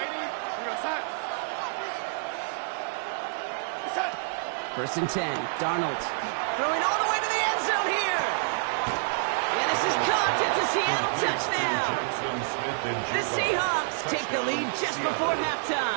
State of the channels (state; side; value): silent; left; 59 dB below the other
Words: First and 10, Darnold throwing all the way to the end zone here. And this is caught. It's a Seattle touchdown. The Seahawks take the lead just before